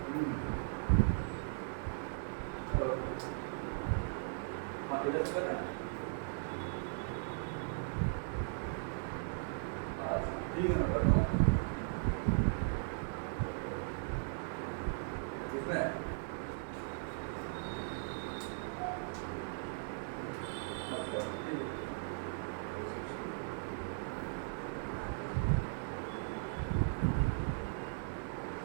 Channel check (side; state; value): left; silent; digital silence